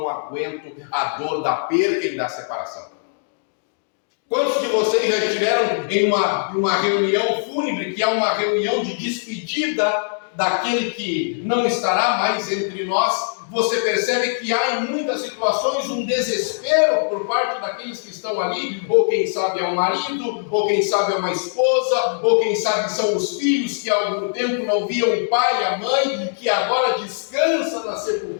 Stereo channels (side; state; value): right; silent; digital silence